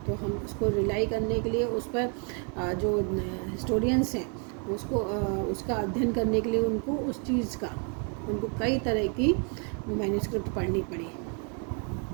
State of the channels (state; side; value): quieter; left; 39.0 dB